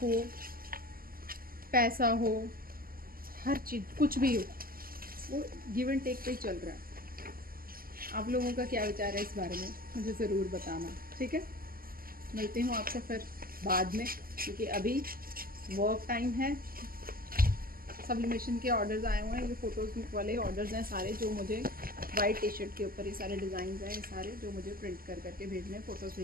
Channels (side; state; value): left; late; 0.42 ms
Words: हो, पैसा हो, हर चीज़ कुछ भी हो, वो गिव एंड टेक पे ही चल रहा है। आप लोगों का क्या विचार है इस बारे में, मुझे ज़रूर बताना, ठीक है? मिलती हूँ आपसे फिर बाद में, क्योंकि अभी वर्क टाइम है। सब्लिमेशन के ऑर्डर्स आए हुए हैं, ये फ़ोटोज़ वाले ऑर्डर्स हैं सारे, जो मुझे वाइट टी शर्ट के ऊपर ये सारे डिज़ाइन हैं, ये सारे जो मुझे प्रिंट कर करके भेजने हैं। फ़ोटोज़